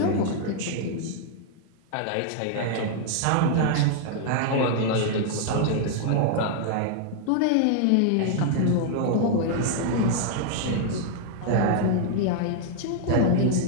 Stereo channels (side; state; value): both; different; correlation 0.00